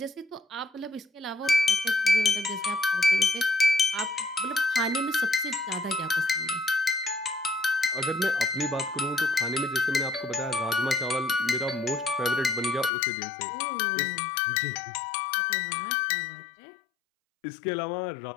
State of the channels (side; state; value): right; drops out; at 12.9 s